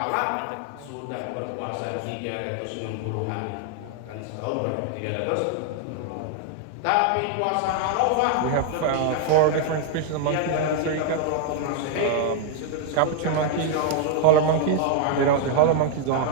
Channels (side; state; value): both; different; correlation 0.00